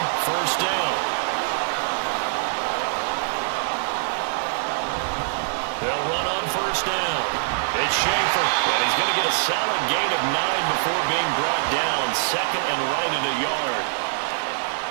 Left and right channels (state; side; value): silent; left; digital silence